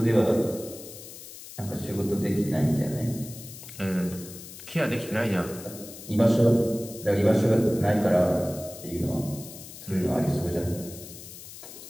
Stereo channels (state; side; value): noise; left; hiss, 14 dB below the sound